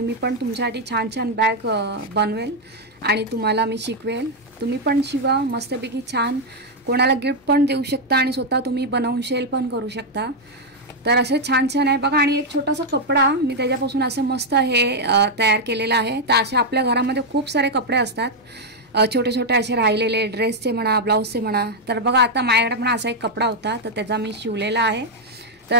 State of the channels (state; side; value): normal; both; correlation 0.00